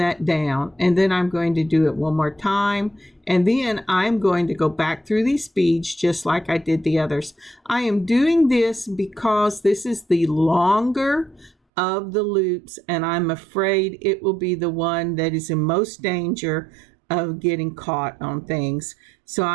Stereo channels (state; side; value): drops out; left; at 11.5 s